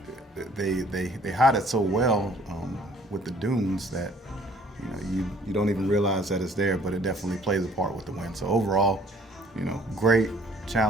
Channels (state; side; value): normal; both; correlation 0.57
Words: they hide it so well with the dunes that you don't even realize that it's there, but it definitely plays a part with the wind. So overall, great,